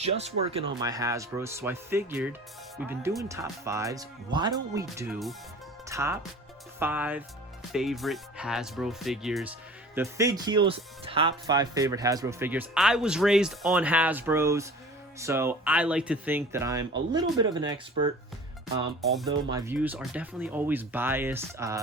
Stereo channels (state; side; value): normal; both; correlation 0.43